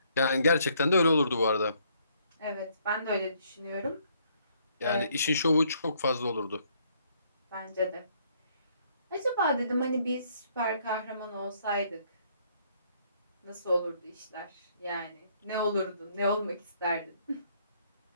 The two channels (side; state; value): both; inverted; correlation -0.67